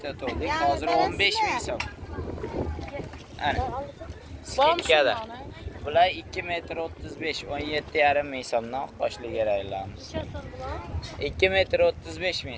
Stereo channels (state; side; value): identical; both; correlation 1.00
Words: Hozir 15 ming so'm. Ana. Skitkada. Bular 2 metr 35, 17,5 ming so'mdan qo'shli keraklarimiz. 2 metr 35